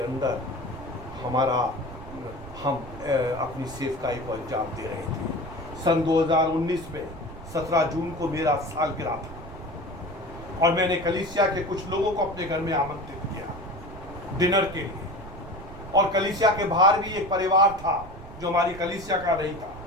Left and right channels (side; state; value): right; noise; rumble, 14 dB below the sound